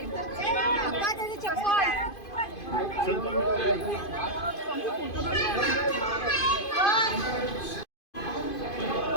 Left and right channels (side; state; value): right; late; 2.5 ms